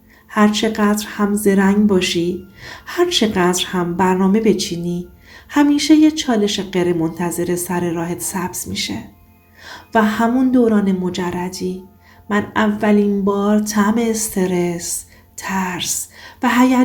هر چقدر هم زرنگ باشی، هر چقدر هم برنامه بچینی، همیشه یه چالش غیر منتظره سر راهت سبز میشه. و همون دوران مجردی من اولین بار طعم استرس، ترس و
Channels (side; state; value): both; identical; correlation 1.00